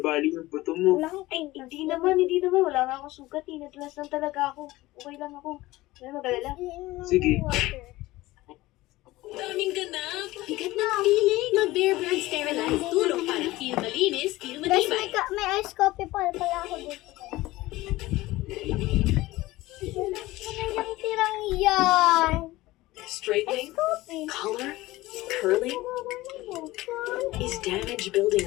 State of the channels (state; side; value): quieter; right; 18.5 dB